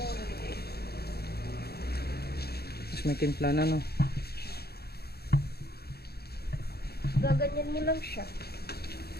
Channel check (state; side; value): late; right; 0.46 ms